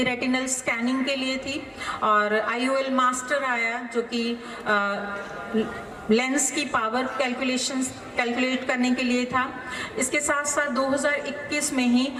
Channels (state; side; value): identical; both; correlation 1.00